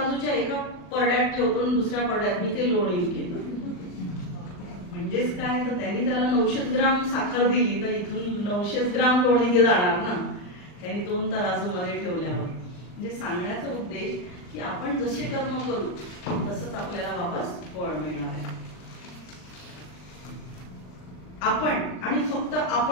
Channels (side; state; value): right; late; 39 ms